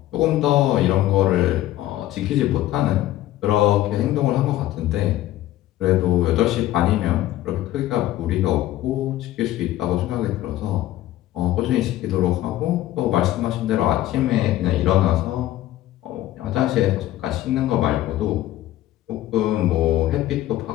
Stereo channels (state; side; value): quieter; right; 14.4 dB